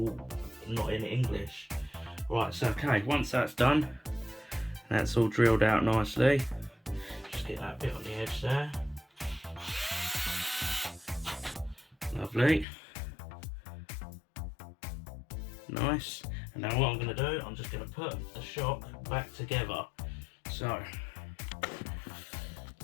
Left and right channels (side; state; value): right; drops out; at 12.7 s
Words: not in English. Right, so okay, once that's done, that's all drilled out nicely. Just get that bit on the edge there. Lovely. Nice. And now what I'm going to do, I'm just going to put the shock back together. So